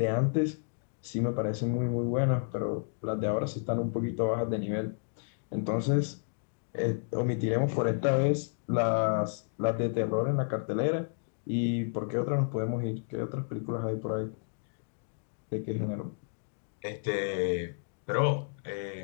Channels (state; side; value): silent; right; digital silence